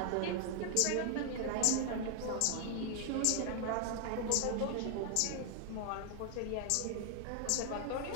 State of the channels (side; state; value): both; different; correlation 0.00